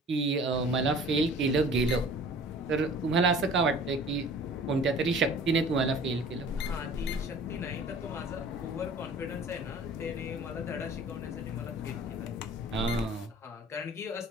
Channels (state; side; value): normal; both; correlation 0.47